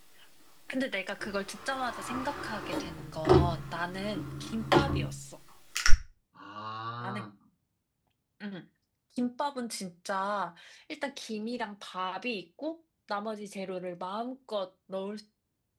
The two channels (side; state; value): both; identical; correlation 1.00